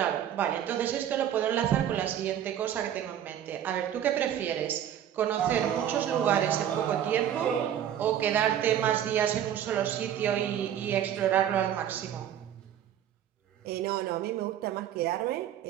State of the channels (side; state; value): left; quieter; 10.3 dB